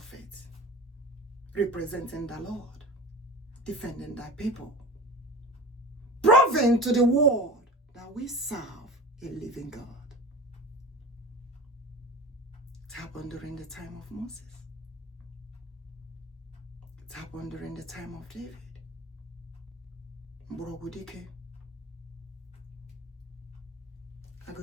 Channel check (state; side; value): normal; both; correlation 0.34